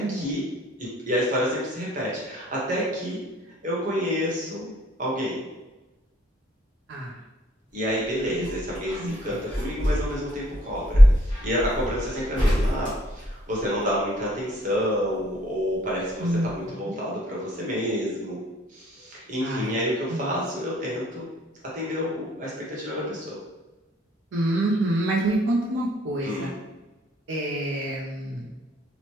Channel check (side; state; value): both; normal; correlation 0.62